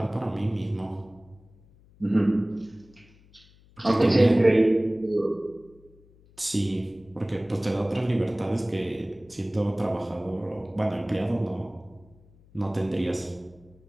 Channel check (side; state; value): left; noise; hum, 27 dB below the sound